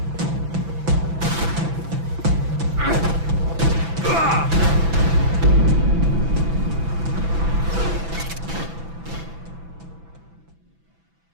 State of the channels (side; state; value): left; late; 6.0 ms